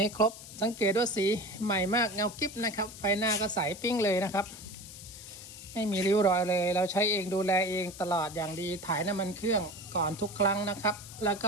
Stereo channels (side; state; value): left; noise; hiss, 15 dB below the sound